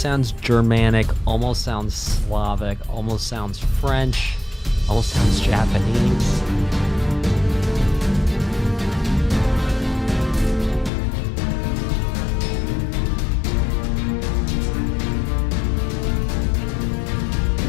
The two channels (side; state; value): right; drops out; at 10.9 s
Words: sounds Germanic, almost sounds Slavic, almost sounds French, almost sounds Japanese.